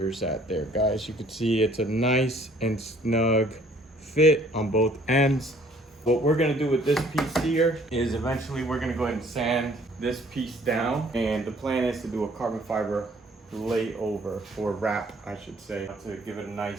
at there, guys? You can see it's a nice and snug fit on both ends. What we're gonna do with this piece here is eventually we're gonna go ahead and sand this piece down, and the plan is to do a carbon fiber layover, or wrap I should say, to give it a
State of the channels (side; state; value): both; normal; correlation 0.58